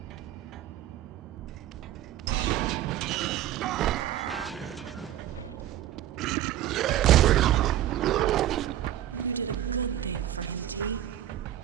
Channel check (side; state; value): left; quieter; 12.3 dB